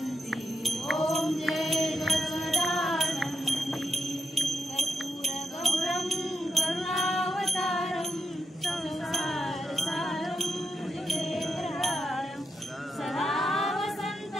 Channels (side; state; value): both; normal; correlation 0.84